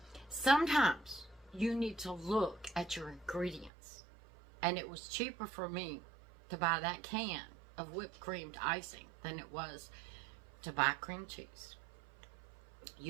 sometimes you need to look at your ingredients. And it was cheaper for me to buy that can of whipped creamed icing than it was to buy cream cheese.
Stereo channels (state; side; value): drops out; left; at 3.7 s